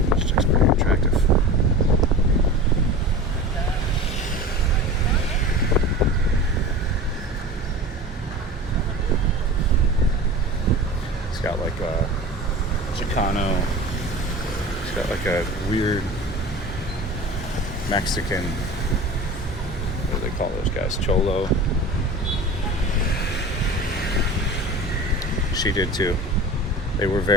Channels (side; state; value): both; normal; correlation 0.34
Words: looks pretty attractive. It's got like a Chicano. It's got like a weird Mexican, what do they call those guys? Cholo. She did too. They were